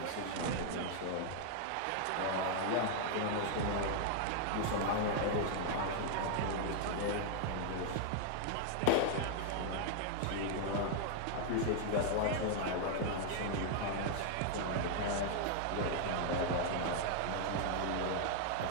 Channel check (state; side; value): different; both; correlation 0.00